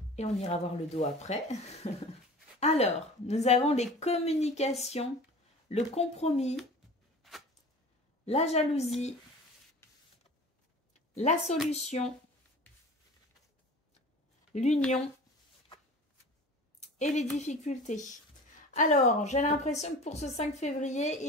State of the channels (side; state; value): both; normal; correlation 0.39